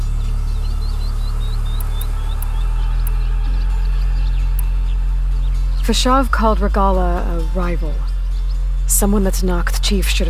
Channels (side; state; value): both; identical; correlation 1.00